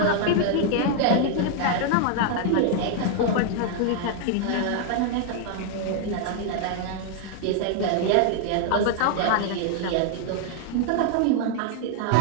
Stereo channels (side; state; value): both; different; correlation 0.00